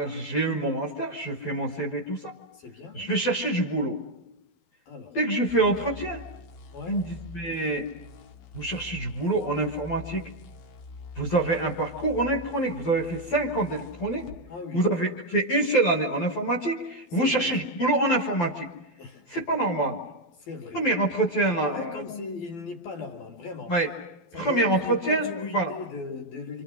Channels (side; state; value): right; late; 12 ms